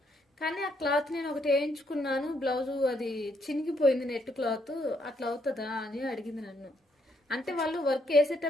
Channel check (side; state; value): both; normal; correlation 0.73